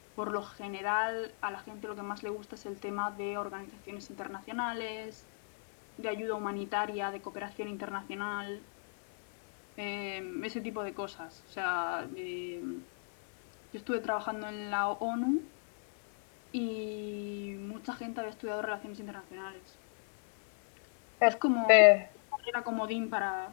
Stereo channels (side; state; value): right; silent; 55 dB below the other